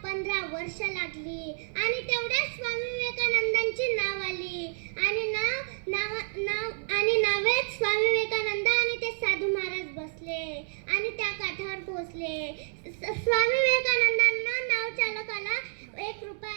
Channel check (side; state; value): left; silent; digital silence